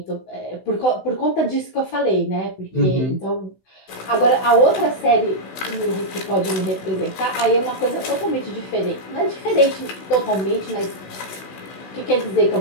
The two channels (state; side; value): late; right; 16 ms